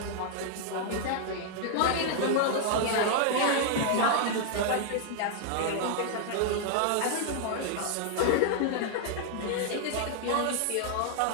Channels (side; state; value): both; different; correlation 0.00